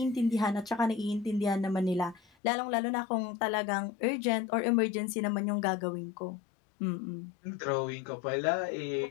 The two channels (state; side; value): drops out; right; at 2.2 s